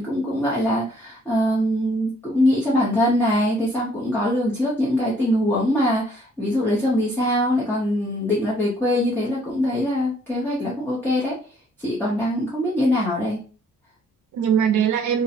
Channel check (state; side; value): normal; both; correlation 0.63